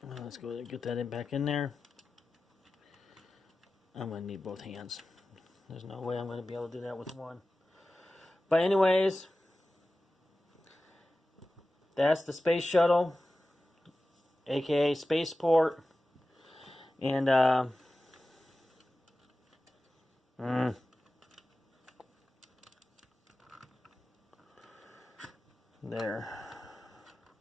let's go and get that back in there. I'm going to need both hands. There's no way I'm going to be able to do that with one. But anyways, that's the space shuttle, aka Spaceport. And there.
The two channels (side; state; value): both; normal; correlation 0.95